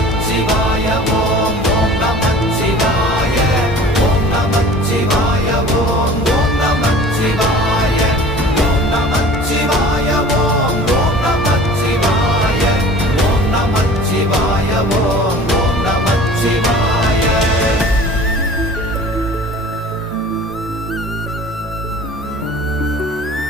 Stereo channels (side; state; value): both; normal; correlation 0.44